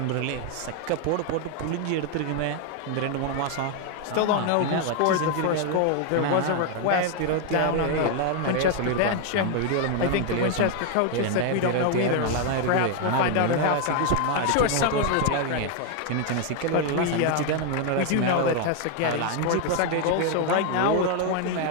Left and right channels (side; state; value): both; different; correlation 0.00